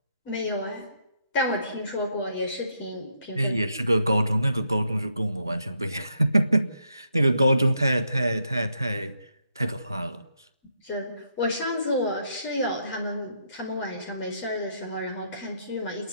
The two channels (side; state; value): both; inverted; correlation -0.77